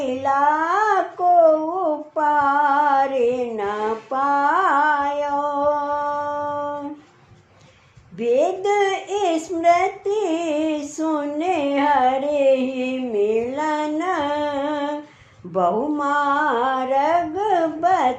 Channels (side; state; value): both; identical; correlation 1.00